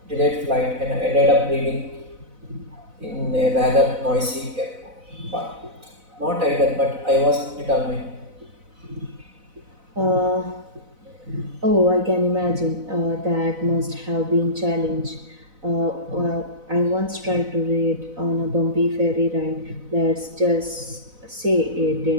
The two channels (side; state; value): left; late; 4.0 ms